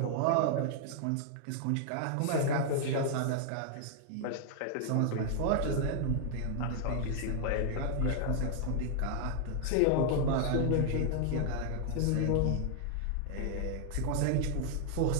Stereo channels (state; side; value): different; both; correlation 0.00